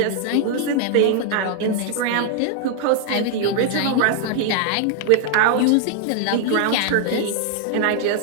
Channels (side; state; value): both; different; correlation 0.00